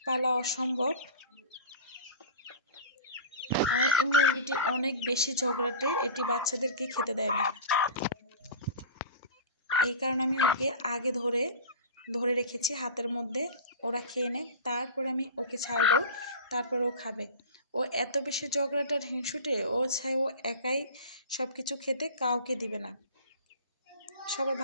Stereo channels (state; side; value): inverted; both; correlation -0.34